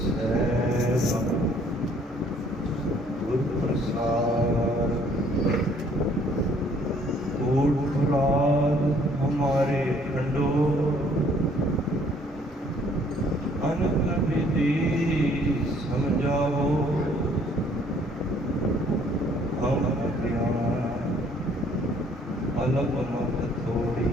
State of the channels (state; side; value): normal; both; correlation 0.61